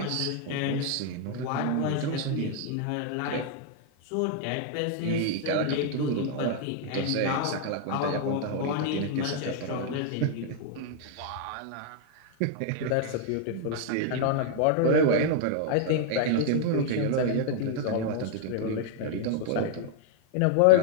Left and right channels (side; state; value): both; different; correlation 0.00